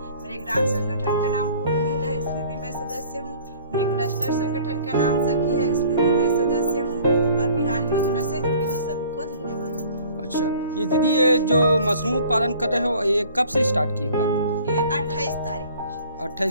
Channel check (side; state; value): both; inverted; correlation -0.51